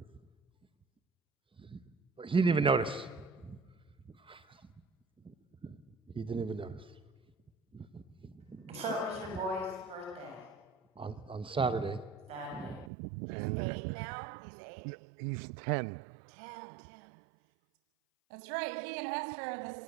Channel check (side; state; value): left; drops out; at 12.9 s